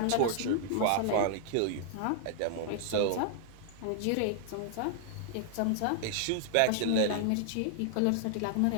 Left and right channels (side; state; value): both; different; correlation -0.01